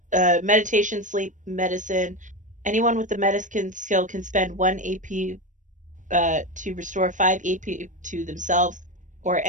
meditation, sleep, medicine. Anyone with the medicine skill can spend 1 AP to restore 5 AP to themselves or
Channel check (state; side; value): late; left; 0.37 ms